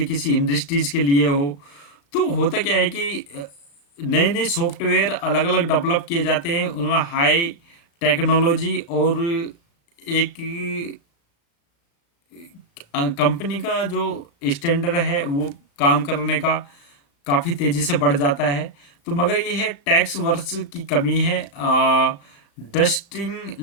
किसी इंडस्ट्रीज के लिए हो। तो होता क्या है कि नए नए सॉफ्टवेयर अलग अलग डेवलप किए जाते हैं, उनमें हाई टेक्नोलॉजी और एक कंपनी का जो स्टैंडर्ड है वो काम करने का काफ़ी तेज़ी से बढ़ जाता है। तो मगर ये है टैक्स वर्ष की कमी है। डस्टिंग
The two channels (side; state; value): right; late; 35 ms